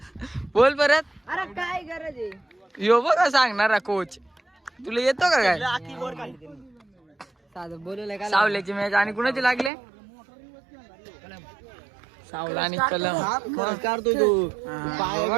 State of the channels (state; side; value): drops out; left; at 9.7 s